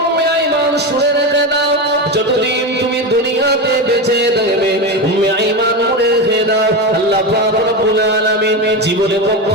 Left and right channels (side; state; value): both; normal; correlation 0.18